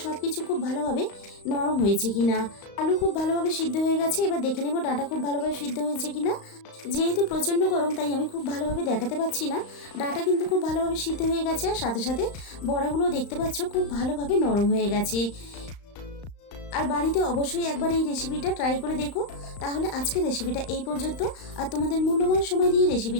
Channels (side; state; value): right; late; 35 ms